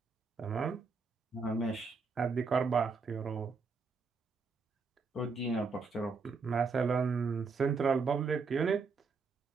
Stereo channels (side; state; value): left; quieter; 4.7 dB